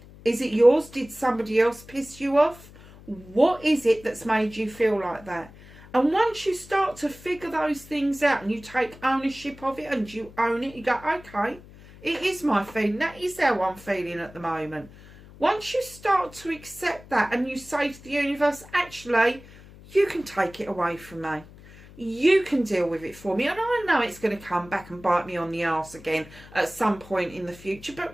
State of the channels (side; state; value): left; noise; hum, 20 dB below the sound